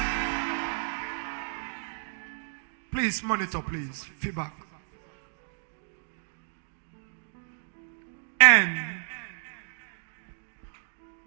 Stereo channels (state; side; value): silent; left; digital silence